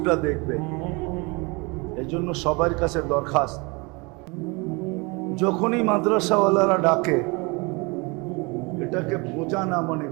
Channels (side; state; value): left; quieter; 28.2 dB